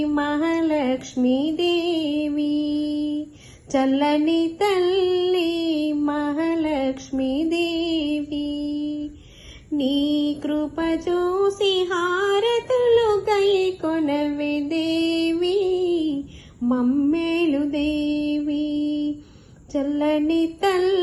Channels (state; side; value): identical; both; correlation 1.00